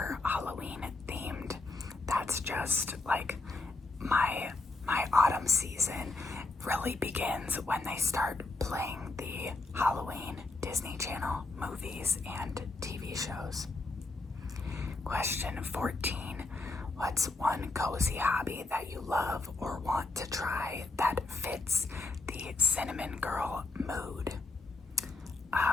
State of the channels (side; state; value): right; quieter; 3.3 dB